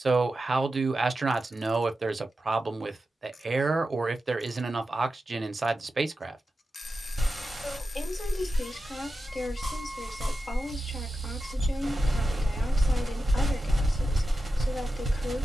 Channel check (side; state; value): both; normal; correlation 0.91